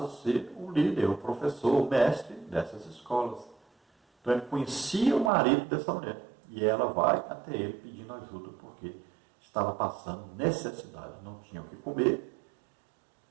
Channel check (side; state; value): left; drops out; at 5.3 s